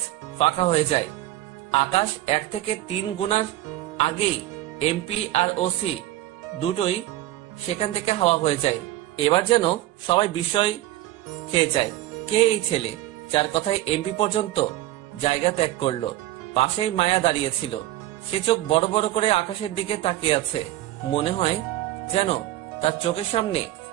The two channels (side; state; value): left; quieter; 15.3 dB